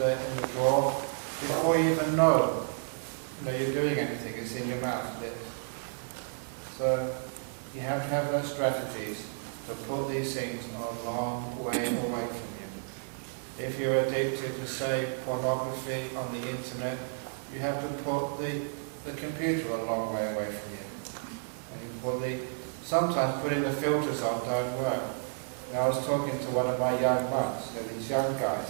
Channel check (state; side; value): silent; left; digital silence